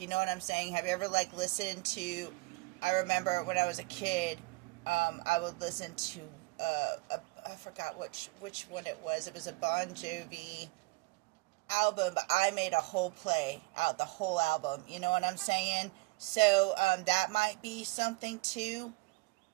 You know what I'm saying? Have you ever like listened to, I remember when I was a kid, I would listen to I forgot which one it was. It was a Bon Jovi album, but I made a whole play out the whole album. You know what I'm saying? So that might be something too.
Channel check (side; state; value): left; quieter; 25.0 dB